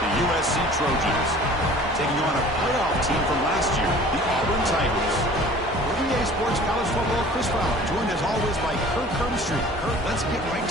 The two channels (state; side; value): normal; both; correlation 0.47